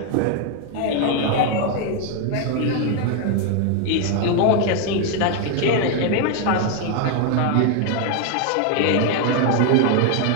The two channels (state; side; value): different; both; correlation 0.01